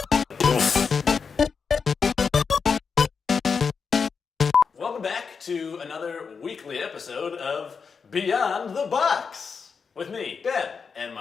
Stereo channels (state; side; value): quieter; right; 5.6 dB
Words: Welcome back to another weekly episode of Beyond the Box with me, Ben, and